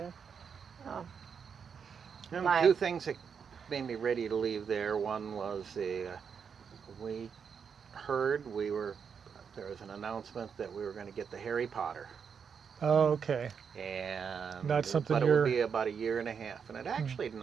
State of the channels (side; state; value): left; quieter; 6.7 dB